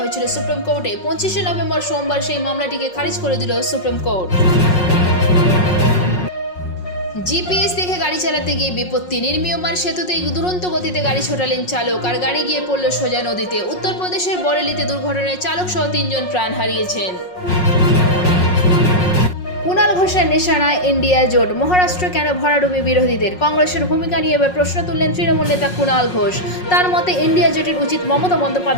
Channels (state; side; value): late; right; 5.5 ms